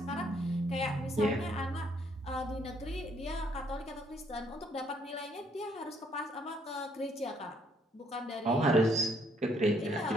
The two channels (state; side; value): normal; both; correlation 0.68